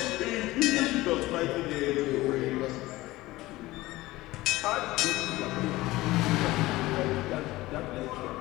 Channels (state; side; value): quieter; right; 18.5 dB